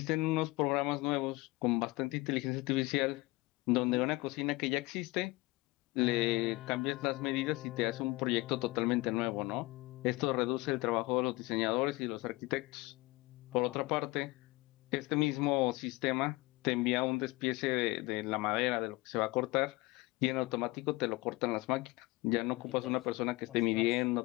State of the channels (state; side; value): quieter; right; 22.4 dB